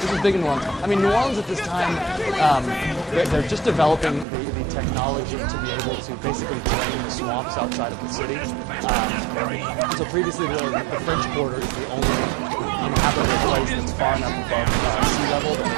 was big in New Orleans. I mean, New Orleans at this time, they're just developing the technology to be able to basically drain the swamps outside of the city. And so previously, the French Quarter is the only inhabitable place that's far enough above sea level that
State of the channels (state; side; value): drops out; left; at 4.2 s